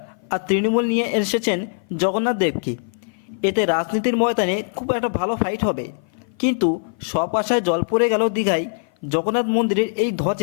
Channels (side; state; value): right; silent; 57 dB below the other